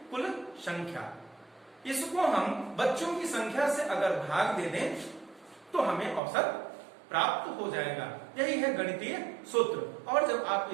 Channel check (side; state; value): left; drops out; at 6.2 s